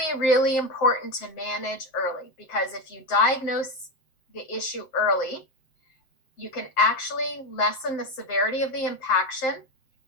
really important to manage early because if you diagnose the issue early, you can actually lessen the severity of the impaction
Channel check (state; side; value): late; right; 7.7 ms